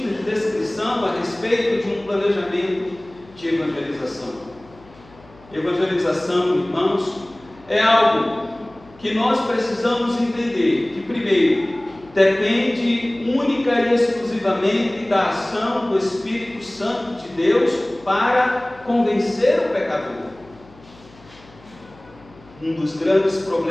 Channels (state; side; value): noise; left; hum, 25 dB below the sound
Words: descrição a respeito de um planejamento de evangelização. Evangelização, irmãos, é algo que nós precisamos entender que, primeiro, depende única e exclusivamente da ação do Espírito Santo de Deus para convencer o pecador. Um dos grandes